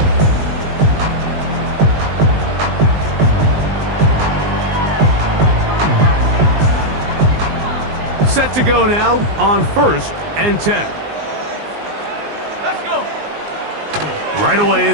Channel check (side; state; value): left; late; 19 ms